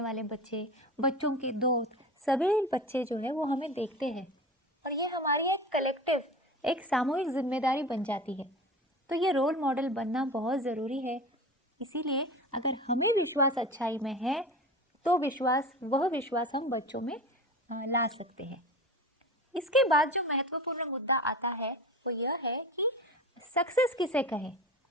वाले बच्चे, बच्चों के दोस्त, सभी बच्चे जो है वो हमें देखते हैं और ये हमारी एक कलेक्टिव, एक सामूहिक जिम्मेदारी बन जाती है। तो ये रोल मॉडल बनना बहुत ज़रूरी है। इसीलिए अगर हमें विश्वास अच्छाई में है तो वह विश्वास हम बच्चों में ला सकते हैं। इसके बाद जो महत्वपूर्ण मुद्दा आता है वो यह है कि सक्सेस किसे कहे,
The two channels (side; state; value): both; normal; correlation 0.32